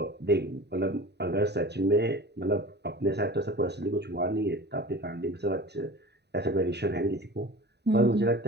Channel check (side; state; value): left; late; 0.49 ms